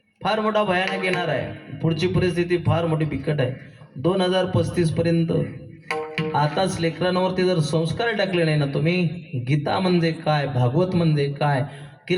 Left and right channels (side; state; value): both; identical; correlation 1.00